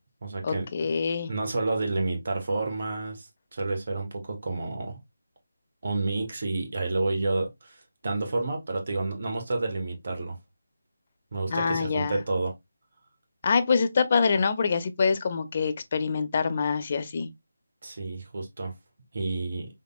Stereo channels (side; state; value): both; inverted; correlation -0.86